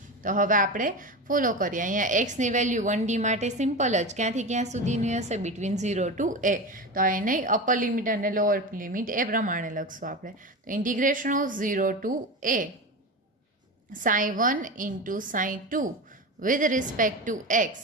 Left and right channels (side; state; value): both; normal; correlation 0.24